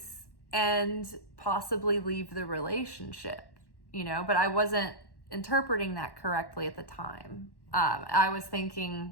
and possibly leave the relationship, but I wasn't interpreting that correctly at the time. I was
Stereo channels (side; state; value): right; late; 1.1 ms